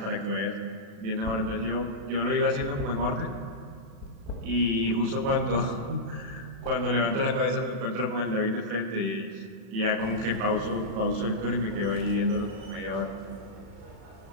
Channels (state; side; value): late; left; 36 ms